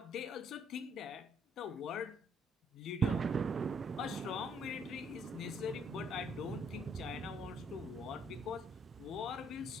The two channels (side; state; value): both; normal; correlation 0.67